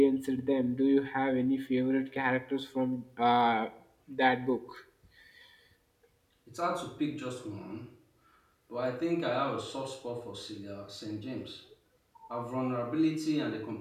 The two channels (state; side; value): identical; both; correlation 1.00